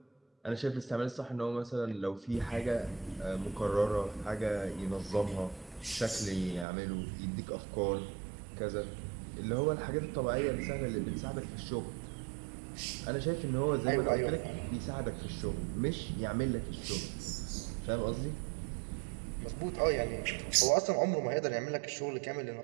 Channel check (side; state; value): left; drops out; at 6.7 s